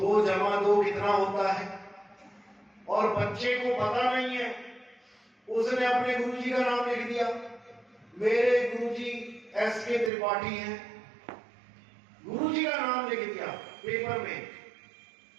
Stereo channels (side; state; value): left; drops out; at 10.1 s